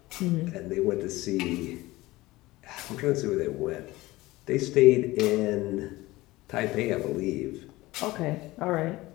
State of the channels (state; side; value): quieter; right; 19.3 dB